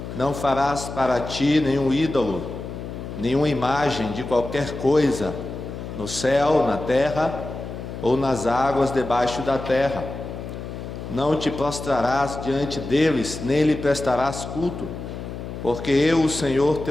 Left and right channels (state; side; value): noise; left; hum, 9 dB below the sound